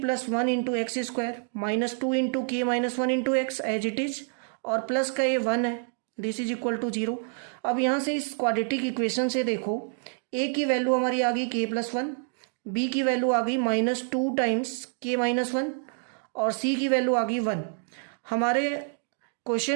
plus 1 into x square minus 2 into K minus 1 into X as it is, और प्लस का ये 1 है, दिस इज इक्वल टू 0। अब यहाँ से इस क्वाड्रेटिक इक्वेशन से देखो ए की वैल्यू हमारी आ गई के प्लस 1, बी की वैल्यू आ गई माइनस 2 टाइम्स के माइनस 1 और सी की वैल्यू आ गई 1। हमारे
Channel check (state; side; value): silent; left; 60 dB below the other